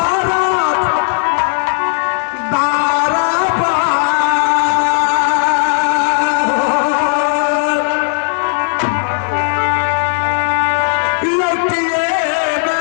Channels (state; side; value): silent; right; 67 dB below the other